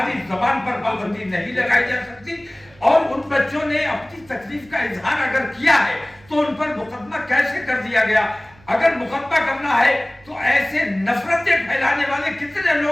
जबान पर पाबंदी नहीं लगाई जा सकती। और उन बच्चों ने अपनी तकलीफ का इजहार अगर किया है तो उन पर मुकदमा कैसे कर दिया गया? अगर मुकदमा करना है तो ऐसे नफरतें फैलाने वाले कितने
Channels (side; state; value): right; noise; hum, 26 dB below the sound